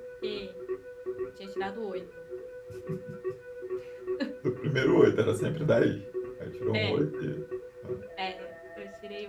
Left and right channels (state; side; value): identical; both; correlation 1.00